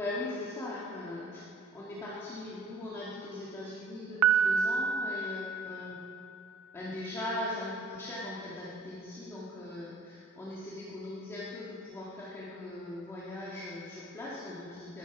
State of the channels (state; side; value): quieter; left; 3.1 dB